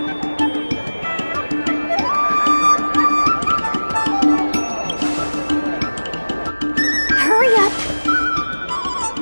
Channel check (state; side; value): inverted; both; correlation -1.00